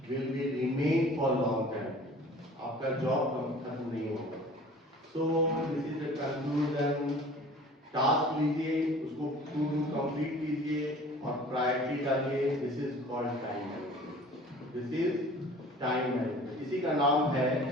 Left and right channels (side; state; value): both; normal; correlation 0.46